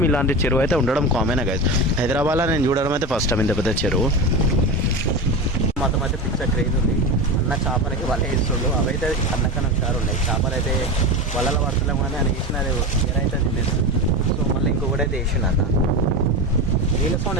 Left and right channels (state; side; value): normal; both; correlation 0.23